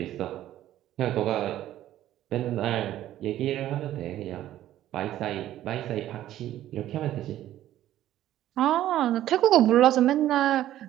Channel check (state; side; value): quieter; left; 13.1 dB